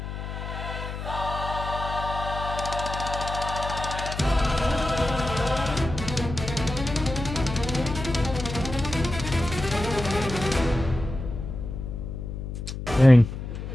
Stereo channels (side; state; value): left; noise; hum, 7 dB below the sound